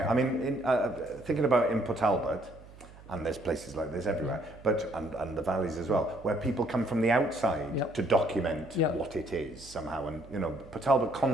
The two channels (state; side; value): noise; right; hum, 20 dB below the sound